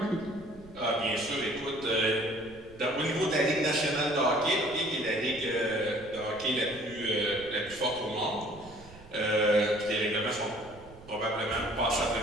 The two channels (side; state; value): right; noise; rumble, 20 dB below the sound